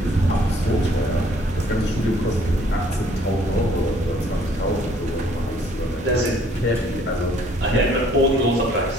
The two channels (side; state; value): both; normal; correlation 0.61